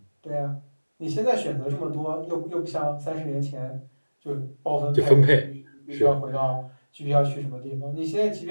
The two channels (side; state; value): both; inverted; correlation -1.00